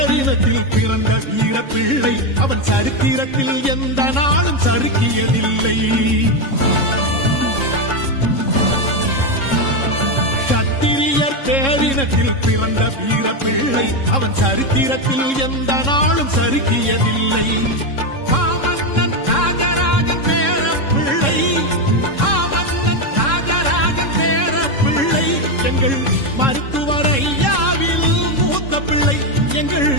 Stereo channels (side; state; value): right; late; 3.7 ms